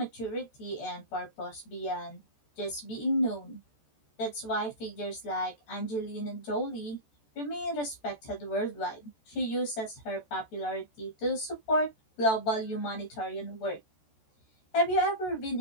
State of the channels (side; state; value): right; late; 14 ms